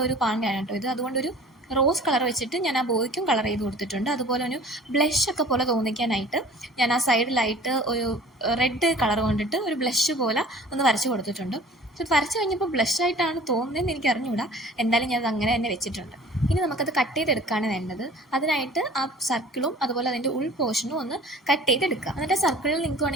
ഒരു പാണ്ടയാണ് കേട്ടോ ഇത്. അതുകൊണ്ടൊരു റോസ് കളർ വെച്ചിട്ട് ഞാൻ ആ ബോയ്ക്കും കളർ ചെയ്ത് കൊടുത്തിട്ടുണ്ട്. അതുപോലെ ഒരു ബ്ലഷ് ഒക്കെ പോലെ തോന്നിക്കാനായിട്ട് ഞാൻ ആ സൈഡിലായിട്ട് ഒരു റെഡ് കളർ കൊണ്ടിട്ട് ഒരു ബ്ലഷ് പോലെ ഒന്ന് വരച്ച് കൊടുത്തിട്ടുണ്ട്. പക്ഷെ വരച്ച് കഴിഞ്ഞപ്പോൾ ബ്ലഷായിട്ടാണ് തോന്നുന്നതെന്ന് എനിക്ക് അറിഞ്ഞുകൂടാ. എന്തായാലും ഞാനത് അങ്ങനെ തന്നെ വെച്ചിട്ടുണ്ട്. ഇനി നമുക്കത് കട്ട് ചെയ്തെടുക്കുകയാണ് വേണ്ടത്. അതിനായിട്ട് ആ സർക്കിളും അതുപോലെ അതിൻ്റെ ഉൾ പോർഷനും ഒന്ന് കട്ട് ചെയ്തെടുക്കുക. എന്നിട്ട് സർക്കിളിൽ നിങ്ങൾക്ക്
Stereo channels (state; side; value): normal; both; correlation 0.47